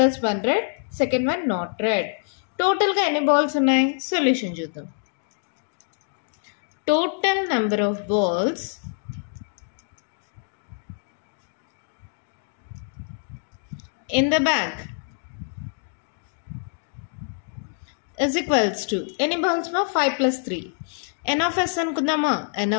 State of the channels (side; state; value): right; silent; digital silence